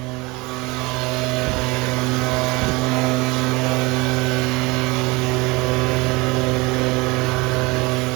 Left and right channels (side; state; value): left; quieter; 24.3 dB